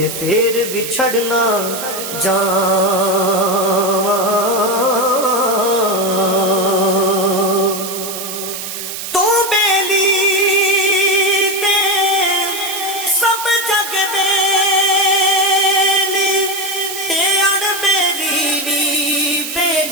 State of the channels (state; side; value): noise; right; hiss, 7 dB below the sound